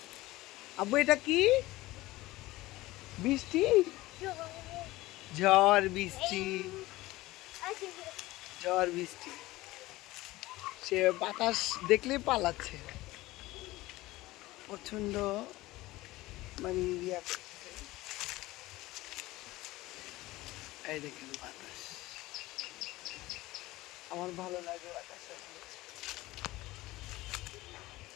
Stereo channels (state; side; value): quieter; right; 18.6 dB